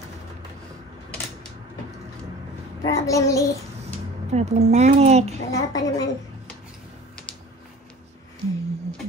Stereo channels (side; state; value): both; normal; correlation 0.42